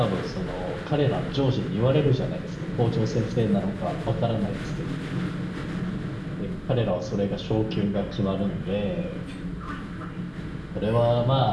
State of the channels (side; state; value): both; identical; correlation 1.00